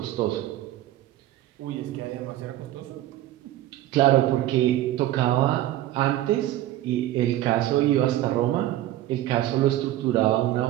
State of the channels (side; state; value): left; quieter; 14.3 dB